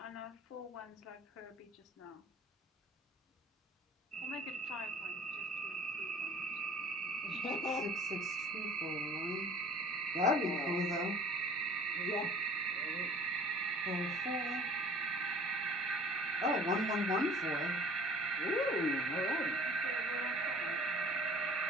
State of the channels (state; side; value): normal; both; correlation 0.47